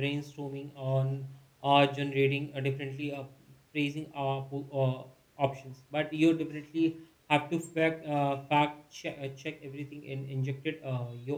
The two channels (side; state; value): both; identical; correlation 1.00